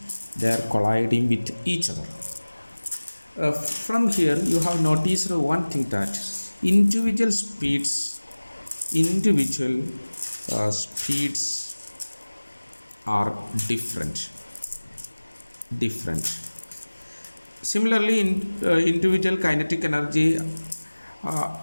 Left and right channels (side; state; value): both; inverted; correlation -1.00